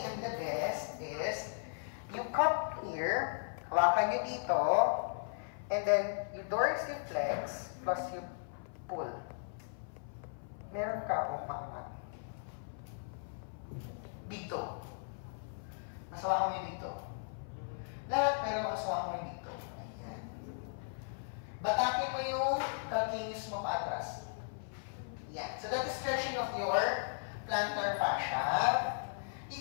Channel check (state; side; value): silent; right; 53 dB below the other